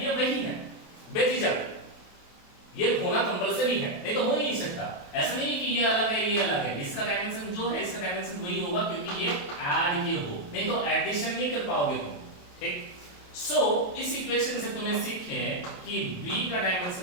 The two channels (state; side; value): late; right; 28 ms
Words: ये वही है, बेझिझक ये होना कंपलसरी है, नहीं तो हो ही नहीं सकता। ऐसा नहीं कि ये अलग है ये अलग है, इसका डायमेंशन जो है इसका डायमेंशन वही होगा, क्योंकि ये ऐड किए हो, नहीं तो एडिशन नहीं कर पाओगे तुम। ठीक, सो इस इक्वेशन से तुमने सीखे कि b का